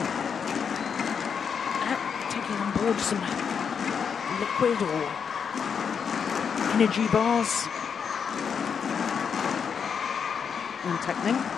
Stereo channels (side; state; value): right; quieter; 6.8 dB